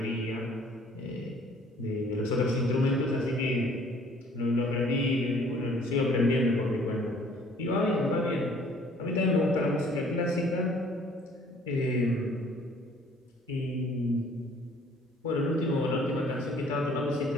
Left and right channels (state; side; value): normal; both; correlation 0.57